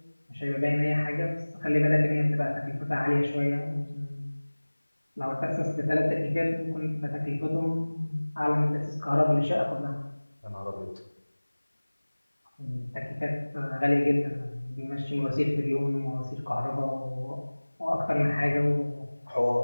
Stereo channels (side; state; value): both; inverted; correlation -1.00